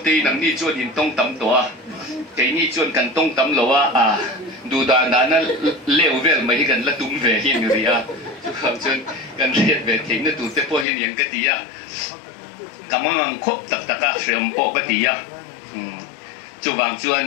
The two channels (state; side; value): drops out; right; at 10.9 s